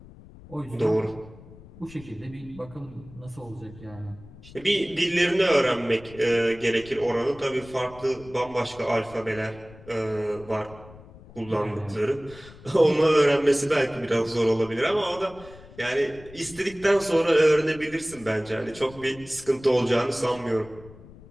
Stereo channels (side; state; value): left; noise; rumble, 20 dB below the sound